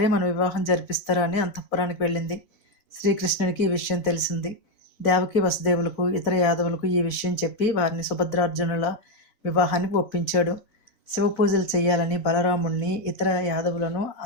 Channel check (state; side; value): late; right; 4.1 ms